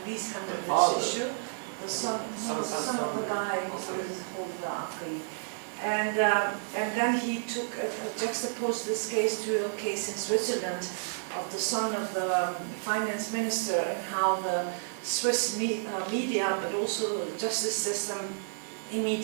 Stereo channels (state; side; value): silent; left; 57 dB below the other